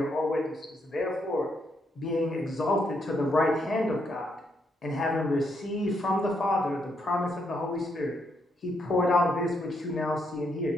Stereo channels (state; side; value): normal; both; correlation 0.77